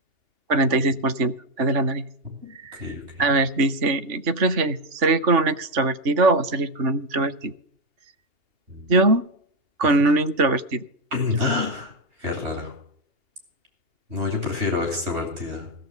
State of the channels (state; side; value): late; left; 2.8 ms